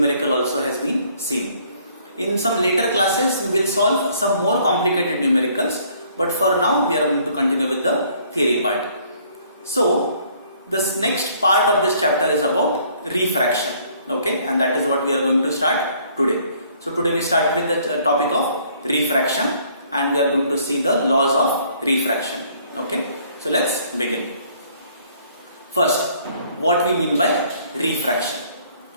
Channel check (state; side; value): inverted; both; correlation -0.61